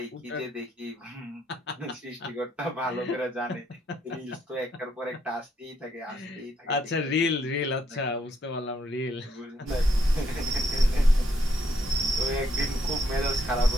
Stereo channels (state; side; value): normal; both; correlation 0.73